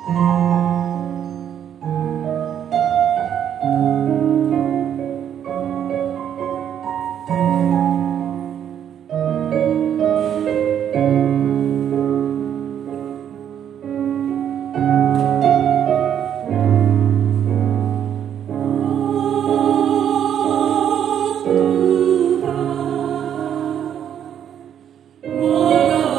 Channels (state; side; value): quieter; left; 9.4 dB